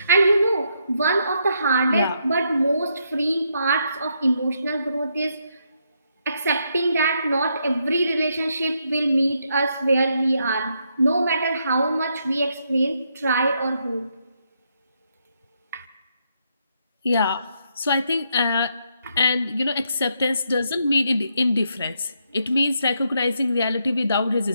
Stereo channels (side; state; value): both; inverted; correlation -0.77